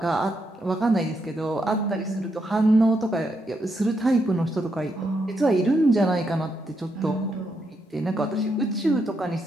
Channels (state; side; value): normal; both; correlation 0.80